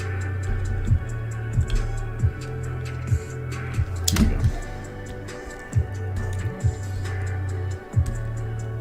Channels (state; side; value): identical; both; correlation 1.00